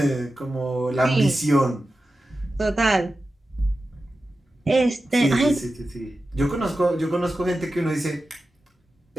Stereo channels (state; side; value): normal; both; correlation 0.93